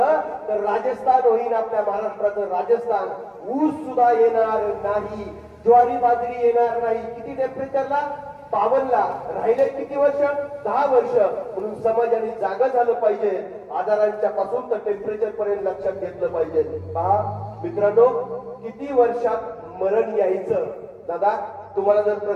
तर राजस्थान होईल आपल्या महाराष्ट्राचं राजस्थान. ऊस सुद्धा येणार नाही, ज्वारी बाजरी येणार नाही. किती टेम्परेचरला? 52ला. राहिले किती वर्ष? 10 वर्ष. म्हणून समाजाने जागा झालं पाहिजे. आजारांच्या पासून तर टेम्परेचर पर्यंत लक्षात घेतलं पाहिजे. पहा मित्रांनो, किती वर्षात मरण यायचं? दादा, तुम्हाला जर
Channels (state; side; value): identical; both; correlation 1.00